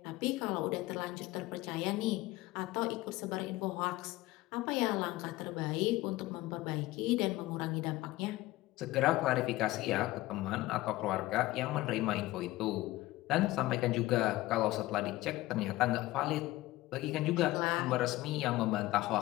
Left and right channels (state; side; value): quieter; right; 18.0 dB